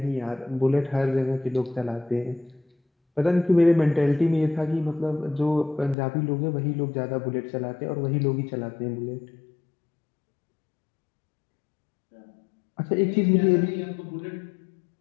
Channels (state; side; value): drops out; right; at 6.0 s